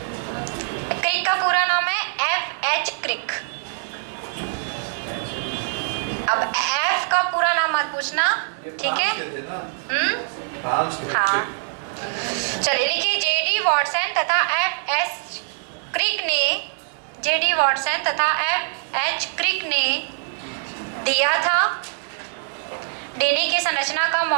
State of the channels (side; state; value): left; silent; digital silence